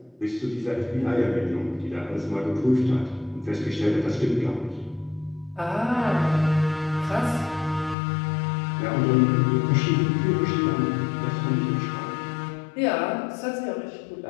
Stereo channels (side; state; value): right; drops out; at 8.0 s